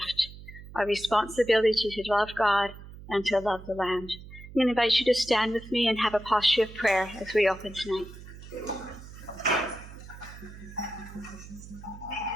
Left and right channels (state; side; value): noise; right; hum, 15 dB below the sound